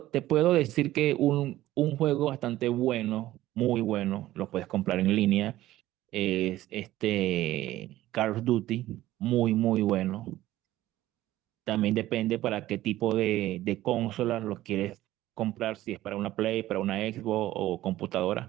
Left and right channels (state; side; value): quieter; left; 15.2 dB